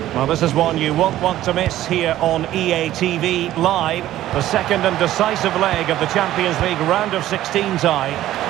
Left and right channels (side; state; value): left; quieter; 13.8 dB